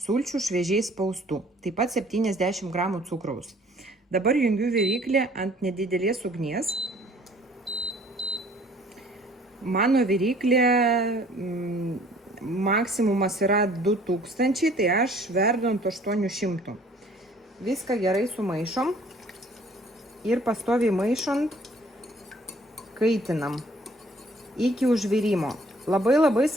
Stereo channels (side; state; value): both; normal; correlation 0.56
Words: sulčių šviežiai spaustų. Taip pat 70 gramų cukraus. Dabar jungiu viryklę ant nedidelės ugnies. Mano viryklė maksimumas yra 2000, tai aš verdu ant 800. Viską gerai sumaišom ir pastoviai maišant kaitinam iki užvirimo. Labai